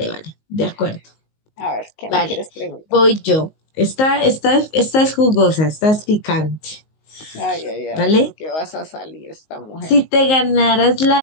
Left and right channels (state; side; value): late; right; 19 ms